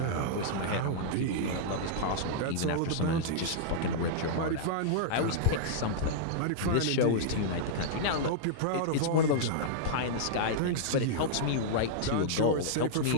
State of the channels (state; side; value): different; both; correlation -0.02